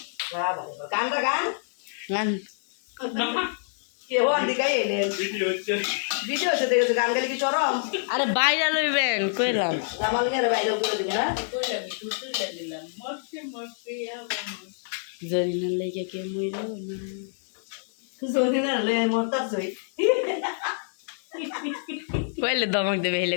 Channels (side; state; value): right; silent; digital silence